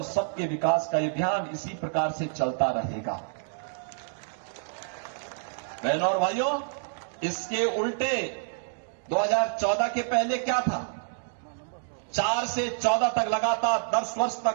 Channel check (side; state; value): left; silent; digital silence